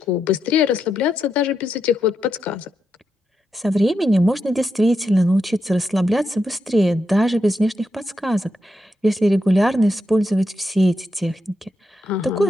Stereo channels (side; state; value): both; normal; correlation 0.84